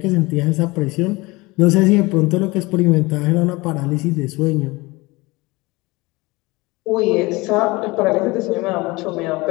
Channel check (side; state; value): right; quieter; 23.0 dB